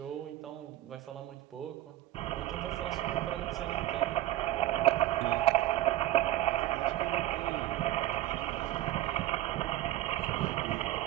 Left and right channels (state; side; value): quieter; left; 14.8 dB